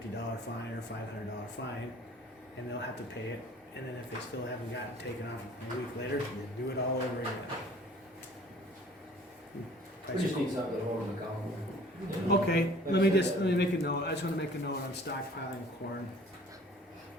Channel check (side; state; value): both; normal; correlation 0.51